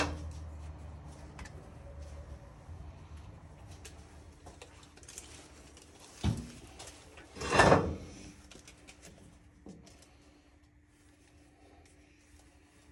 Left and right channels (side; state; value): both; identical; correlation 1.00